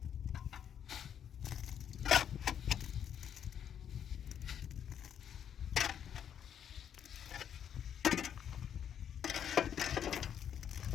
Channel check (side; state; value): right; quieter; 8.9 dB